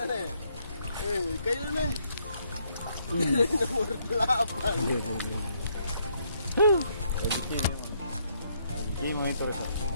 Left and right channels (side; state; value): both; inverted; correlation -0.72